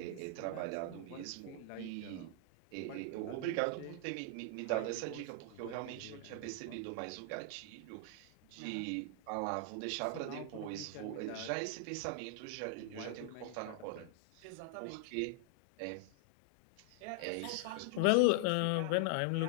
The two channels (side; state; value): both; different; correlation 0.00